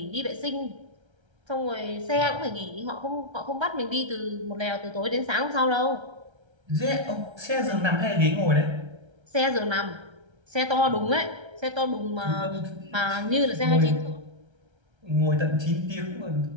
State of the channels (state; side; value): late; left; 1.3 ms